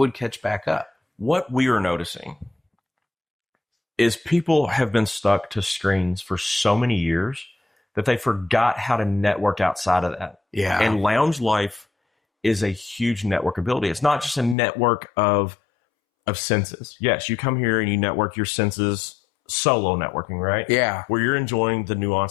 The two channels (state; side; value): drops out; right; at 14.6 s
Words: catch back up. What we are noticing is people have been stuck to screens for so many years that they forgot how to network outside of that. Yeah. And lounge life is a huge network ability. It's not just a network of senses. Yes, you come here and you network your senses, solo networking, right? Yeah. Where you're enjoying the